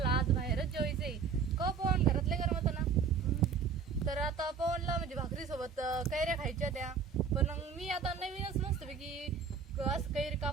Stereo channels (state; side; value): quieter; left; 5.9 dB